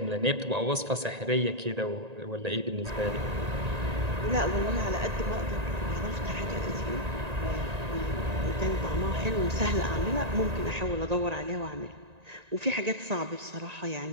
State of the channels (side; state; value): left; late; 1.9 ms